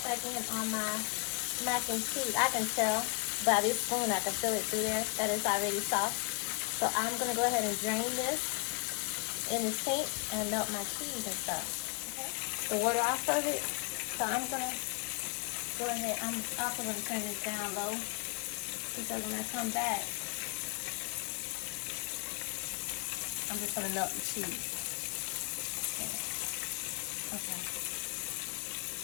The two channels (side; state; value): right; quieter; 38.4 dB